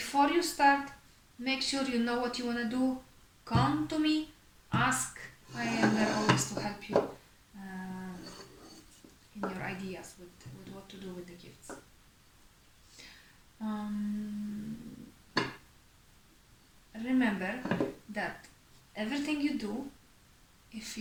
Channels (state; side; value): identical; both; correlation 1.00